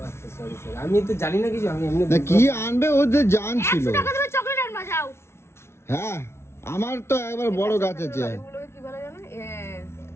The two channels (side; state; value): right; late; 0.13 ms